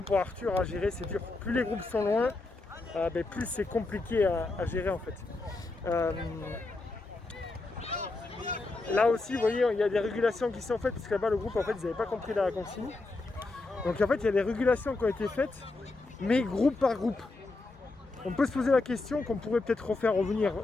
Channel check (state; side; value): quieter; right; 3.3 dB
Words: pour Arthur à gérer, c'est dur. Plus les groupes sont loin, plus c'est compliqué à gérer en fait. Là aussi, vous voyez, il y a des régulations qui sont faites, parce que là-bas, le groupe, en fait, ils n'avaient pas compris la consigne. Donc, en fait, il y a des régulations qui ont été faites, mais groupe par groupe. On peut se poser la question qu'on pourrait peut-être refaire revenir